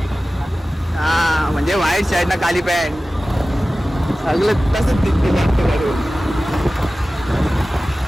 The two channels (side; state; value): both; normal; correlation 0.96